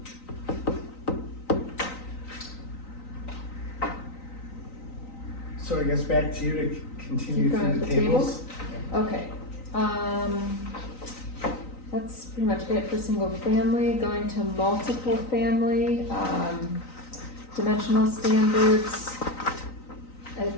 So I guess back to you to continue Keep going through the with the tables. Okay, that's pretty much it for single family. Going to multiple family, dimensional standards.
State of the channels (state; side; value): late; right; 3.9 ms